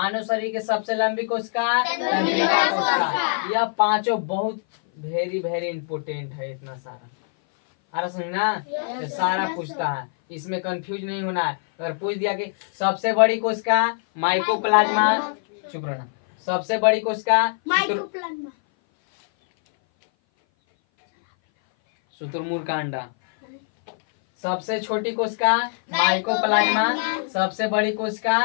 शरीर के सबसे लंबी कोशिका तंत्रिका कोशिका। यह पांचों बहुत वेरी वेरी इंपोर्टेंट है। इतना सारा अरे समझना ये सारा पूछता है। इसमें कंफ्यूज नहीं होना है। अगर पूछ दिया कि सबसे बड़ी कोशिका माइकोप्लाज्मा, चुप रहना। सबसे बड़ी कोशिका शुतुरमुर्ग का अंडा। सबसे छोटी कोशिका माइकोप्लाज्मा। सबसे बड़ी कोशिका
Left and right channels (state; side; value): silent; right; 58 dB below the other